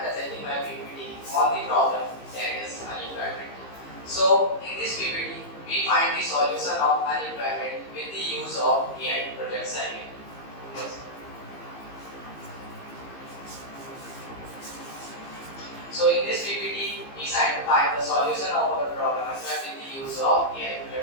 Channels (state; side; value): late; right; 15 ms